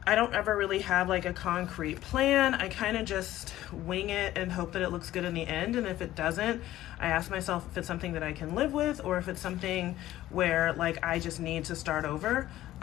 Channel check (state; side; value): quieter; right; 14.5 dB